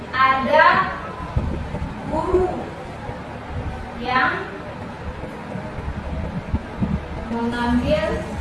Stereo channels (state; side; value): identical; both; correlation 1.00